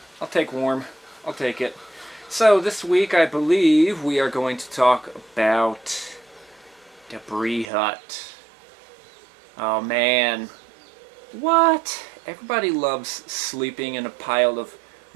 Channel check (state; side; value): drops out; left; at 7.7 s